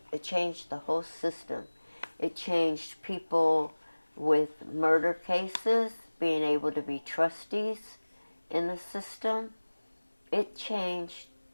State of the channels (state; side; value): inverted; both; correlation -1.00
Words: It changed the whole system. It changed people with murder cases being able to be trustees in the system. It changed